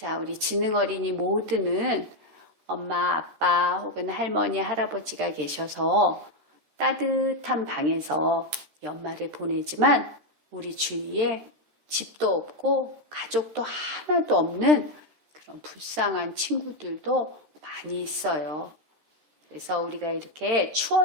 우리 지능어린이 모두는 엄마, 아빠 혹은 할머니, 할아버지가 계셔서 따뜻한 방에서 연말을 보내지만 우리 주위에 집도 없고 가족도 하나도 없는 그런 불쌍한 친구들도 많이 있어요. 그래서 우리가 이렇게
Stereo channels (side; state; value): left; late; 13 ms